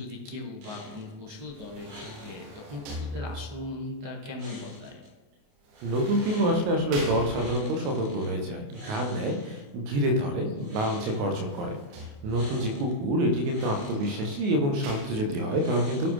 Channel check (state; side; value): late; left; 28 ms